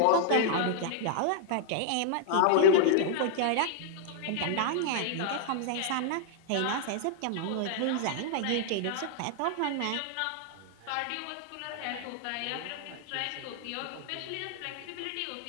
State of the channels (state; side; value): different; both; correlation -0.01